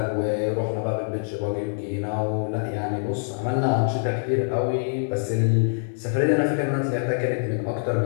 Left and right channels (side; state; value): right; silent; digital silence